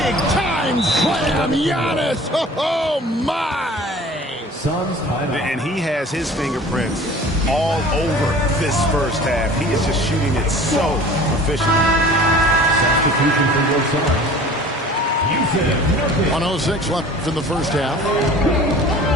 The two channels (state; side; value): normal; both; correlation 0.44